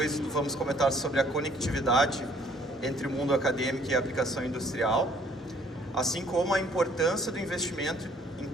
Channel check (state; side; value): normal; both; correlation 0.60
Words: vamos comentar sobre a conectividade entre o mundo acadêmico e a aplicação industrial, assim como a importância do investimento em